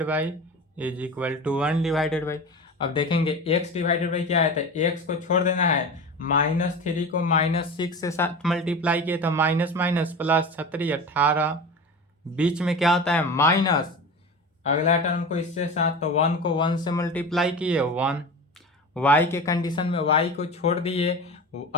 by is equal to 1 divided by. अब देखेंगे x डिवाइडेड बाई क्या है, तो x को छोड़ देना है, -3 को -6 से साथ मल्टीप्लाई किए तो माइनस माइनस प्लस 36 18, बीच में क्या होता है? माइनस। अगला टर्म को इससे साथ, तो 1 को 1 से मल्टीप्लाई किए 1, y के कंडीशन में y को छोड़ दिए,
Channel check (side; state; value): both; normal; correlation 0.30